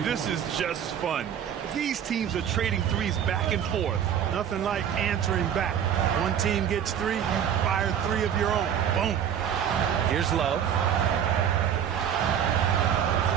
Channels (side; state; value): left; quieter; 9.0 dB